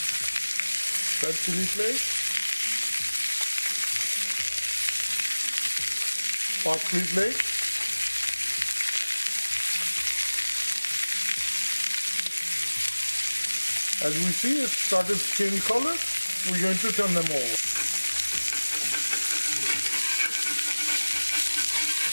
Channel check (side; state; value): both; inverted; correlation -1.00